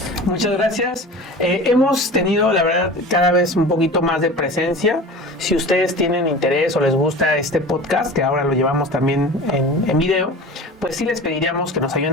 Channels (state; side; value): normal; both; correlation 0.36